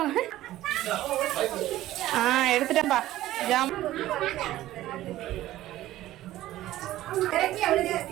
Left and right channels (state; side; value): quieter; left; 14.9 dB